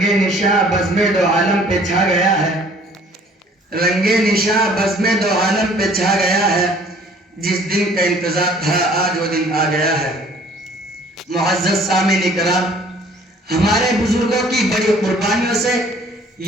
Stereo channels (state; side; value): normal; both; correlation 0.55